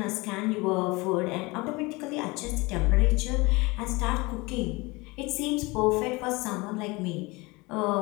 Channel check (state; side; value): quieter; right; 24.4 dB